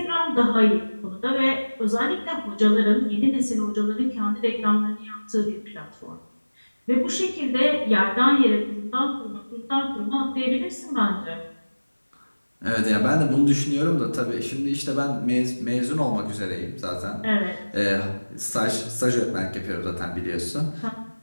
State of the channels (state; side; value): inverted; both; correlation -1.00